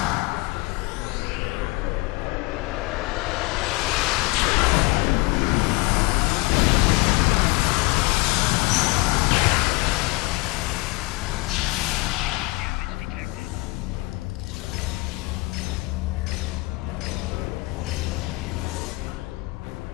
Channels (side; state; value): right; quieter; 23.5 dB